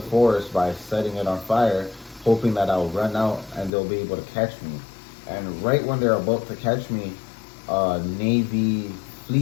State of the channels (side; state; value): right; drops out; at 3.7 s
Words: forest by setting it on fire, hoping that I'll run out and they'll be able to catch me. And right when they're about to catch me, a Navy